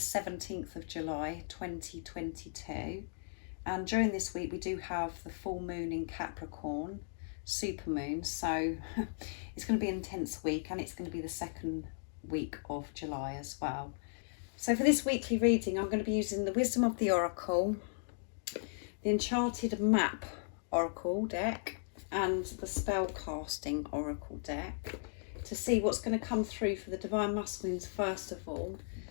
of July 2022. And during this week we do have the full moon in Capricorn, supermoon, so it's going to be an intense week, and it's going to be the second week of July as well. So for this weekly reading I'm going to be using the Wisdom of the Oracle, the Enchanted Map Oracle deck, and the Spellcasting Oracle deck to see what's going to come through for the Divine Masculines first of all,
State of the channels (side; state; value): right; silent; digital silence